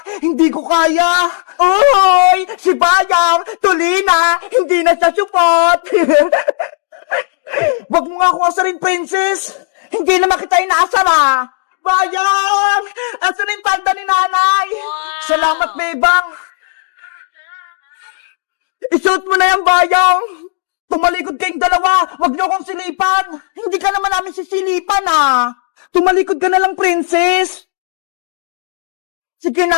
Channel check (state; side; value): silent; right; digital silence